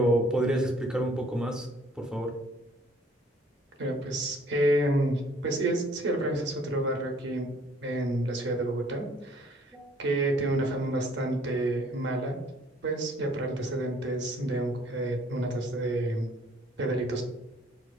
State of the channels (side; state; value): both; normal; correlation 0.59